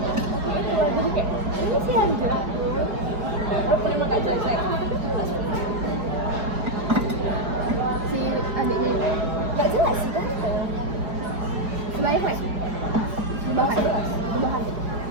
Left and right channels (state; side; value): late; left; 4.9 ms